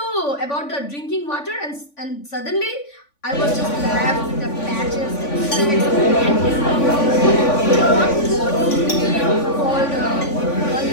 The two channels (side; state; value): right; late; 3.5 ms